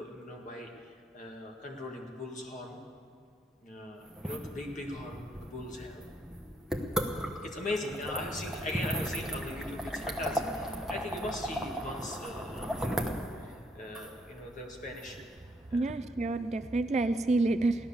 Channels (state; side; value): normal; both; correlation 0.72